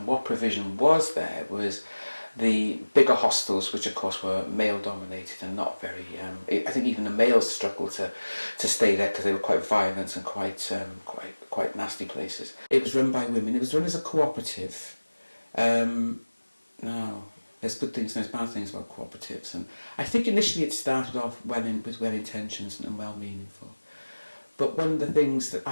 what provision was there was the bigger hostels, which of course were male-dominated and not very. I think even the males struggled to stay there because they were quite violent and quite nasty places. It was run by women. It was run as a cooperative. Now, there's good things and there's bad things about cooperatives. And I think initially it started off with well intentions and well meaningful. But one of the things that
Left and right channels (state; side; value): inverted; both; correlation -1.00